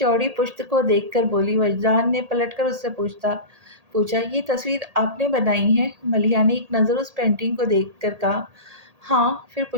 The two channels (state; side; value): late; left; 1.8 ms